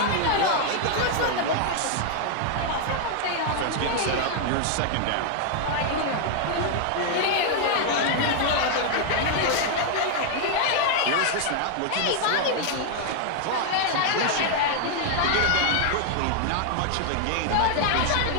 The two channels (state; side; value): different; both; correlation 0.00